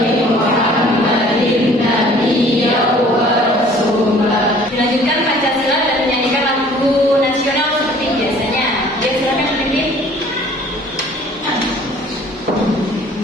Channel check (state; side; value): normal; both; correlation 0.53